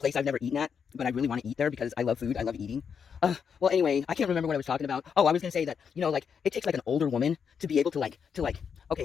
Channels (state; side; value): quieter; right; 6.9 dB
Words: I've never eaten at, but I really want to eat there because I love food. I love eating. Well, anyway, I can't remember what I was talking about. Oh, I was going to say that, like, it takes, like, an older woman to be able to, like,